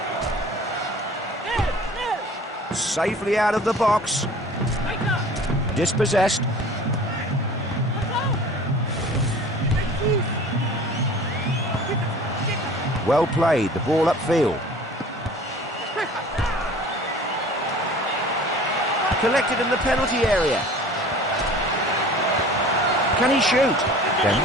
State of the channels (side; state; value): both; normal; correlation 0.45